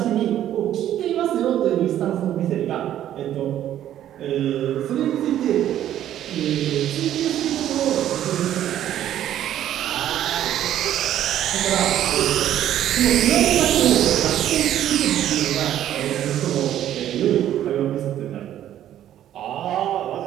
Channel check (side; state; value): left; quieter; 11.6 dB